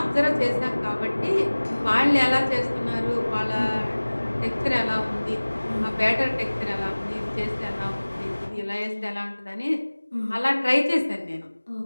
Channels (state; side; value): inverted; both; correlation -1.00